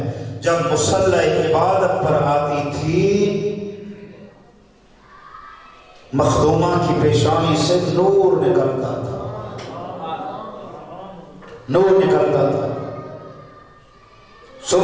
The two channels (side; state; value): both; identical; correlation 1.00